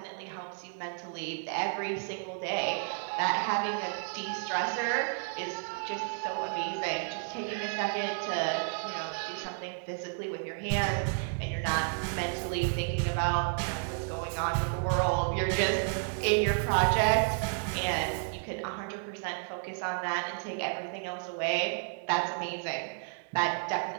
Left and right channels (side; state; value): left; silent; 57 dB below the other